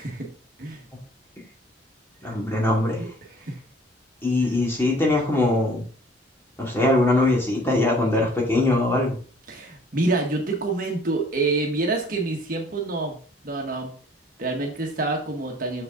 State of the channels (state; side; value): normal; both; correlation 0.54